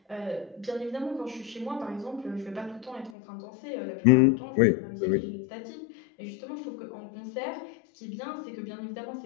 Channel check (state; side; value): drops out; right; at 3.1 s